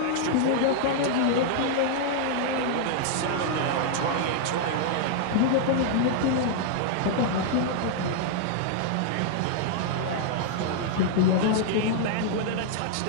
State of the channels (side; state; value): both; different; correlation -0.01